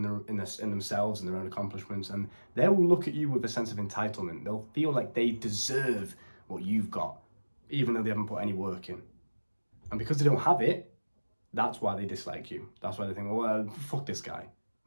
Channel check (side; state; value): both; inverted; correlation -1.00